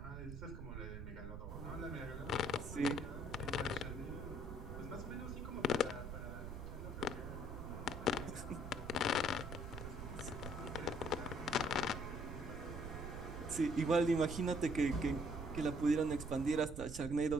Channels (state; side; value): noise; right; rumble, 8 dB below the sound